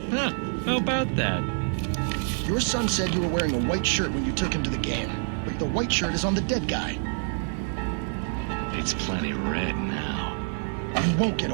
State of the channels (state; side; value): silent; left; 60 dB below the other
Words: Huh, how about that? Your son said you were wearing a white shirt when you took him to the game. But the white shirt is on the dead guy. It's plenty red now. You won't get